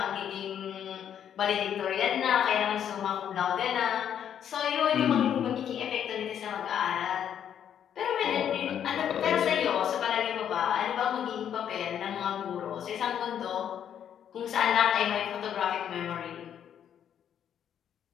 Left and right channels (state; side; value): quieter; right; 9.3 dB